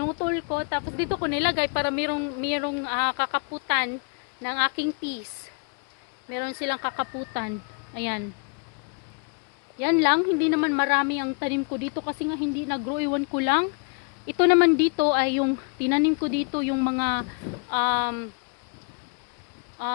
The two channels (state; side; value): quieter; right; 35.2 dB